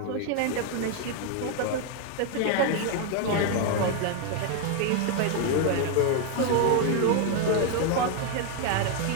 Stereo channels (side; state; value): both; different; correlation 0.00